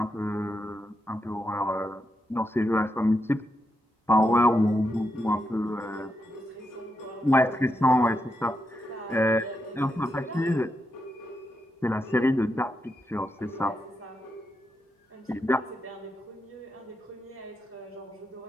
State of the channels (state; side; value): normal; both; correlation 0.84